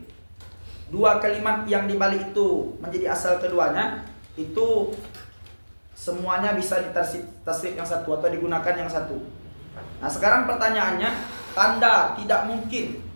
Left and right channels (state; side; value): inverted; both; correlation -1.00